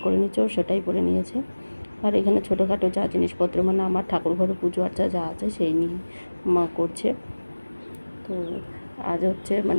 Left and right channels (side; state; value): both; inverted; correlation -1.00